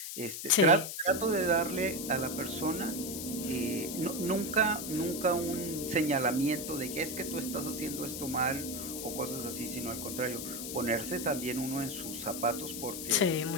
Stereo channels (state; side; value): noise; left; hiss, 6 dB below the sound